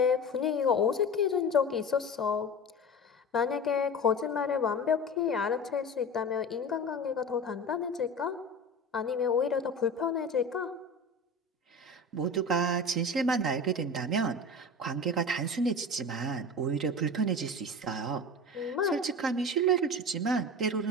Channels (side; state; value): both; normal; correlation 0.31